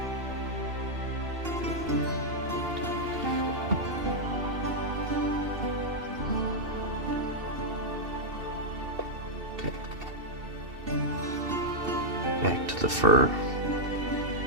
Back to the fur.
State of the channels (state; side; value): late; left; 2.7 ms